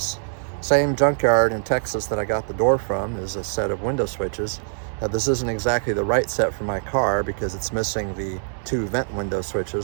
same junkyard in Texas that I got the door from is a set of window switches. Now this isn't exactly the right set for my car because it's missing the 2 vent window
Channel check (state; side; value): silent; left; digital silence